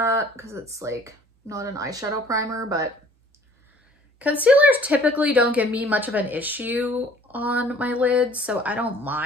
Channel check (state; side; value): normal; both; correlation 0.53